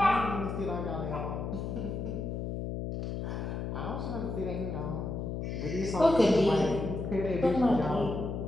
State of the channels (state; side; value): noise; left; hum, 4 dB below the sound